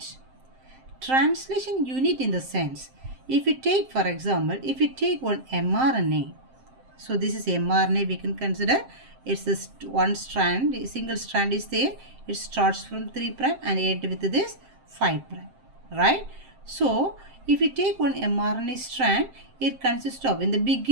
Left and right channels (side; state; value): left; late; 7.6 ms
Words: Translation unit in the sense, if we take, for example, if we take one mRNA, so this is mRNA, we can consider it's this one strand, single strand is there, it starts from 3 prime and end with this 5 prime, right? So if we take one mRNA strand, it consists of, in the